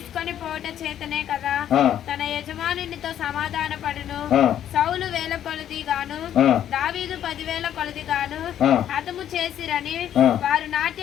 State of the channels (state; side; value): quieter; right; 10.6 dB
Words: పోట చేతనే కదా తన యజమానునితో సమాధాన పడును. సౌలు 1000 కొలది గాను దావీదు 10,000 కొలది గాను హతము చేసిరని వారు